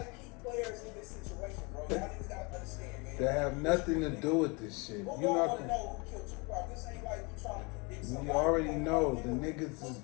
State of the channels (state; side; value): quieter; right; 29.1 dB